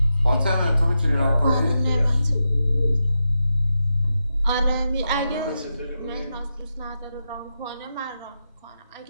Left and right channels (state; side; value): inverted; both; correlation -0.87